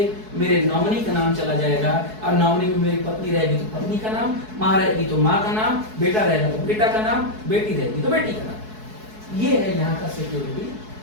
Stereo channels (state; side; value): late; left; 4.7 ms